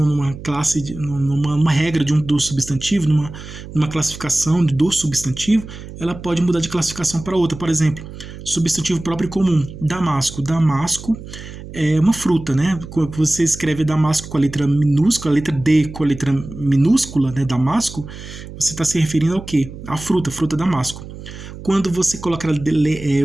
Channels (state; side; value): noise; right; hum, 13 dB below the sound